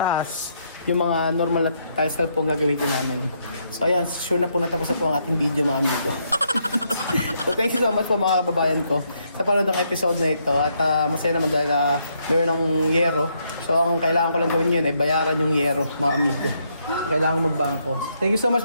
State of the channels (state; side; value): inverted; both; correlation -0.75